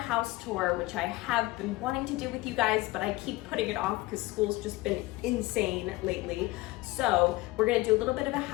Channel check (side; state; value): right; quieter; 20.2 dB